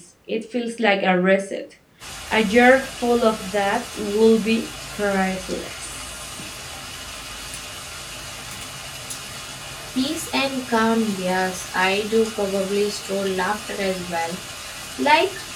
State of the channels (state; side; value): identical; both; correlation 1.00